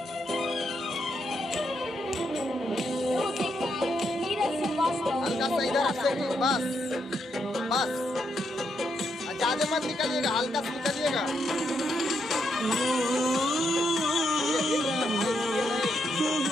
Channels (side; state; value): both; normal; correlation 0.79